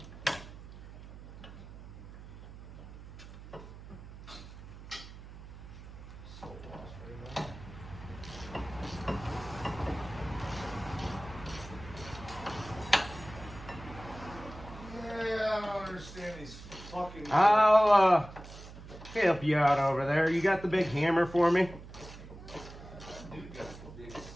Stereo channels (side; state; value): right; noise; hum, 15 dB below the sound